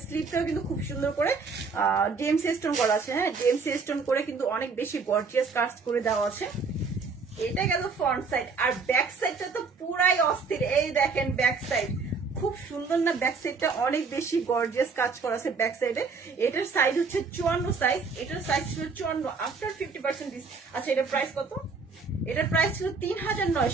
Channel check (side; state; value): left; quieter; 4.7 dB